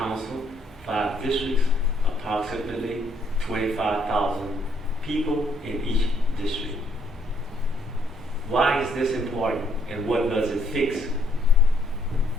5 districts, approximately 25,000 people in each district. Why is this important and what does it fix?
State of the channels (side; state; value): both; normal; correlation 0.69